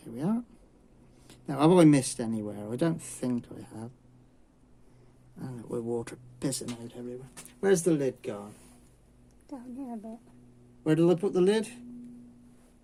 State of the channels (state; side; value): identical; both; correlation 1.00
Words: we are. Now, have I missed anywhere? I don't think I have. And we're water pissing out everywhere. Where's the lid gone? Down here a bit. Where did I put the lid?